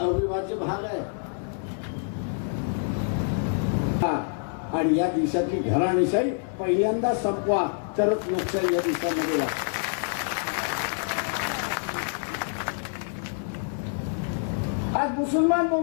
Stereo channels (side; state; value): right; silent; digital silence